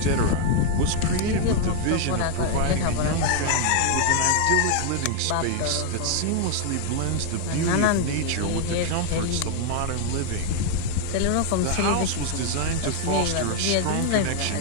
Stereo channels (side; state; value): both; different; correlation 0.00